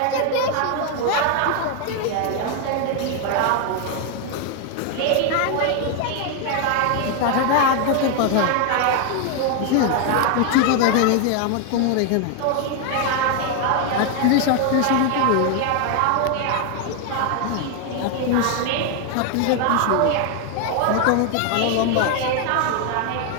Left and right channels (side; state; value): both; different; correlation 0.01